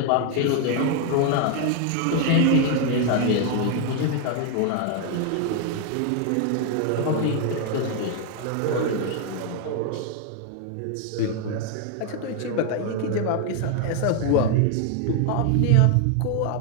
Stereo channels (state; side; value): different; both; correlation 0.01